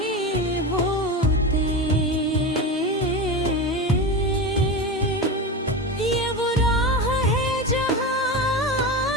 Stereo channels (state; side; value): normal; both; correlation 0.22